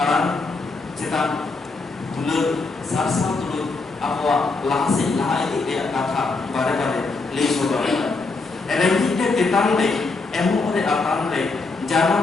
cetak dulur sarsa dulur apa lahasi lahai dia kata bare le sodara erengi te tetang le emu ore atan le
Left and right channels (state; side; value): quieter; right; 3.8 dB